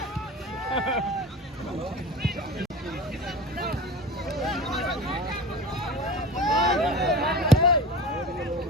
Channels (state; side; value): normal; both; correlation 0.34